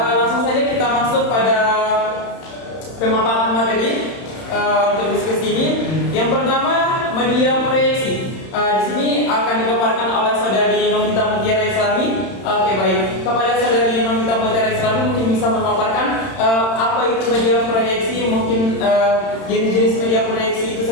kita masuk pada pemaparan materi untuk diskusi ini. Yang pertama, media proyeksi. Di sini akan dipaparkan oleh saudari Novita Putera Islami. Oke, baik. Kepada saudari Novita Putera Islami mungkin bisa memaparkan apa itu media proyeksi, mungkin jenis-jenis media proyeksi itu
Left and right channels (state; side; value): late; right; 31 ms